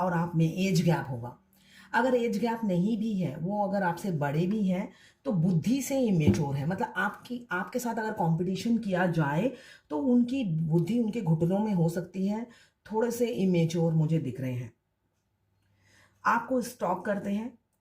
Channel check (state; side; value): identical; both; correlation 1.00